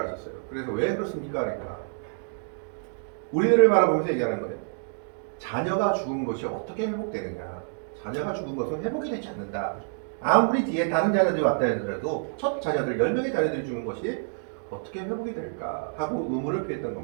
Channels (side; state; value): left; silent; digital silence